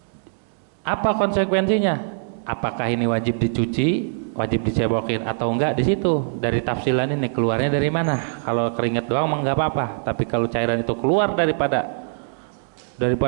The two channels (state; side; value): silent; left; digital silence